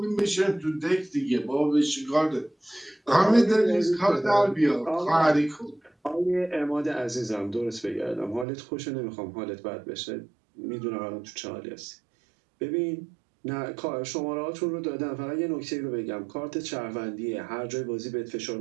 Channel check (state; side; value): drops out; left; at 8.5 s